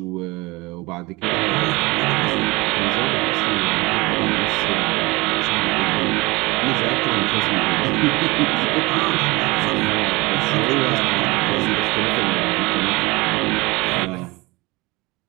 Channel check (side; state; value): left; quieter; 23.4 dB